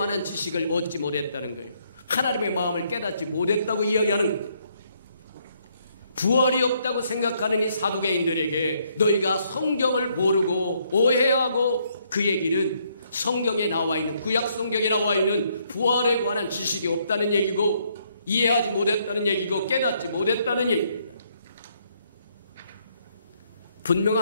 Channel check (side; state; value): both; inverted; correlation -0.71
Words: 지식을 얻지 못했다는 거예요. 하나님의 마음을 깨닫지 못했다고 이야기하는 거예요. 부활이 없다고 생각하는 이 사두개인들에게 너희가 성경을 모르고 오해하고 그 얘기는 성경에 나와 있는 구약 성경에 나와 있는 부활에 관한 지식이 없다는 얘기고 이해하지 못했다는 얘기고 깨닫지 못했다는 얘기입니다.